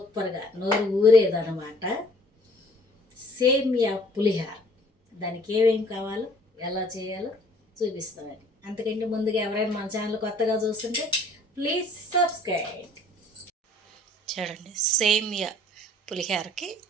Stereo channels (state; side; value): normal; both; correlation 0.55